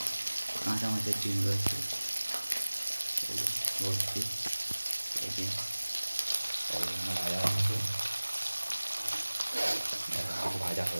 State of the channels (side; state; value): both; inverted; correlation -1.00